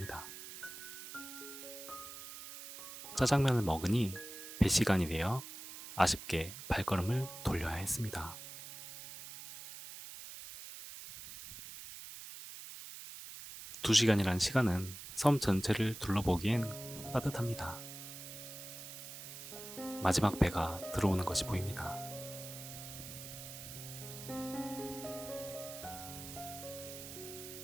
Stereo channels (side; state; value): right; noise; hiss, 11 dB below the sound